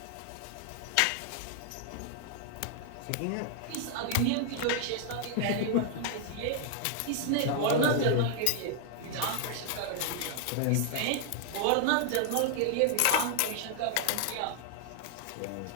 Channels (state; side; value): different; both; correlation 0.00